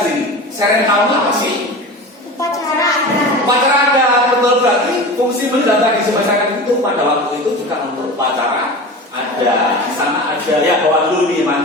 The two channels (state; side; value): normal; both; correlation 0.32